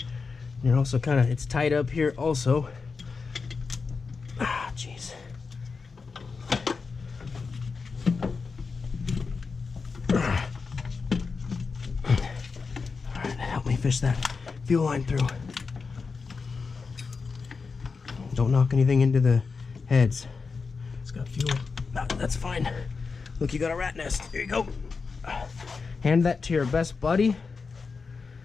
You're also kind of, it's tight up here also. Ah, jeez. fish that fuel line through. Don't knock anything into the heads. It's got fuel. That's fine. Look, you got a rat nest. Here you go. Hand that to your best buddy.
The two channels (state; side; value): quieter; right; 4.8 dB